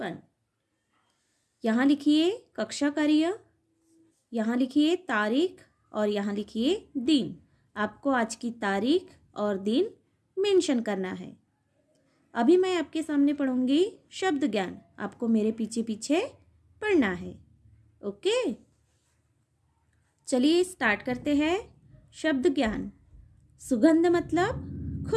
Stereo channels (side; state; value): both; identical; correlation 1.00